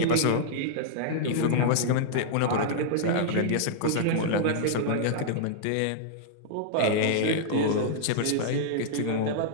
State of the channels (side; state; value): both; different; correlation -0.01